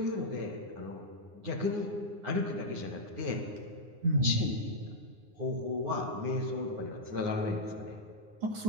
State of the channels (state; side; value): late; left; 9.7 ms